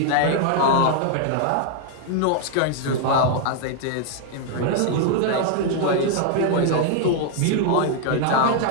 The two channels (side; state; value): both; different; correlation 0.00